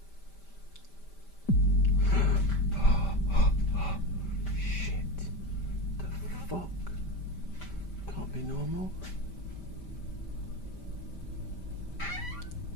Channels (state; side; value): late; right; 5.1 ms